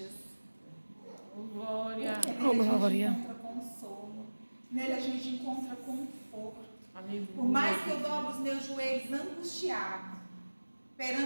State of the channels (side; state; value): both; inverted; correlation -1.00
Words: Glória. Porque nele a gente Glória. encontra consolo. Nele a gente encontra conforto. Aleluia. Por mais que eu dobre os meus joelhos angustiado